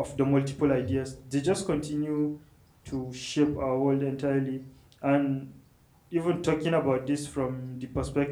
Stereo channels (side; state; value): both; identical; correlation 1.00